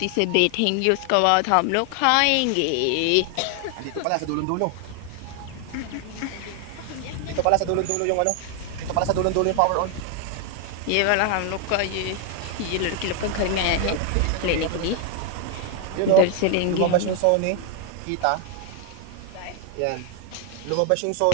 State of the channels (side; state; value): both; different; correlation 0.00